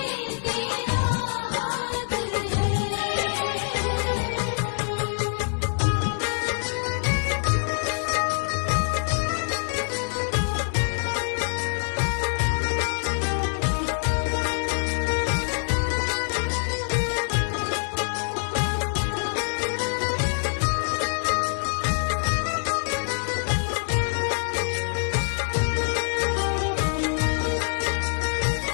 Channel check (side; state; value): right; silent; digital silence